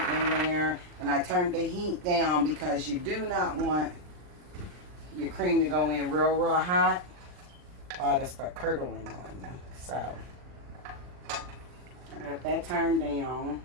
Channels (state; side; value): late; left; 39 ms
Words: in there. And I turned the heat down because you do not want your cream to go in real, real hot, or it'll start curdling on you. So I got that turned down.